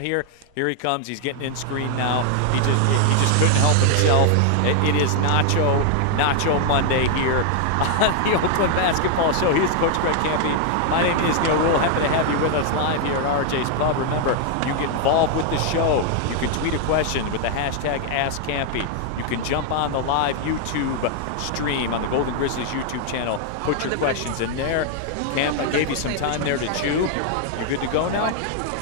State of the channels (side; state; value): both; different; correlation 0.00